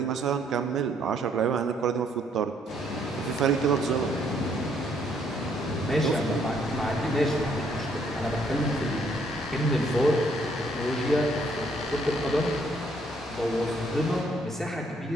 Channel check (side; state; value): both; normal; correlation 0.68